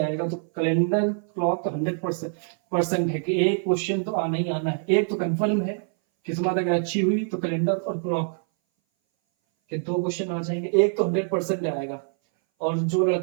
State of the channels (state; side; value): silent; left; 59 dB below the other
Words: आएगा तो कैलेंडर क्लॉक तो 100% है कि एक क्वेश्चन तो आना ही आना है। एक तो कंफर्म है, किस्मत अगर अच्छी हुई तो कैलेंडर और क्लॉक के 2 क्वेश्चन आ जाएंगे। एक तो 100% आएगा। और जो